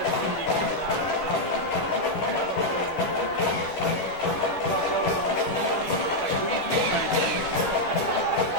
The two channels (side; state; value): right; late; 11 ms